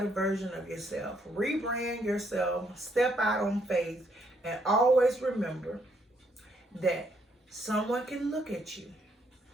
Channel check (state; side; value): normal; both; correlation 0.72